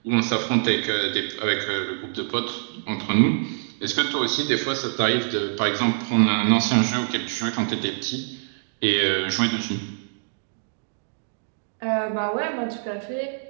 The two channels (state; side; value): silent; left; digital silence